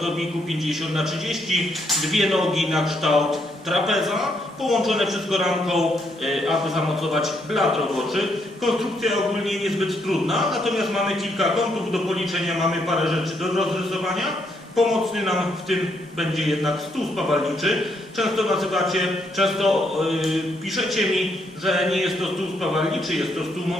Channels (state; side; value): normal; both; correlation 0.75